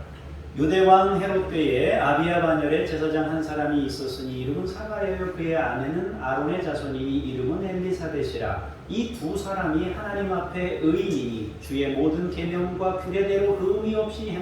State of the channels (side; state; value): both; identical; correlation 1.00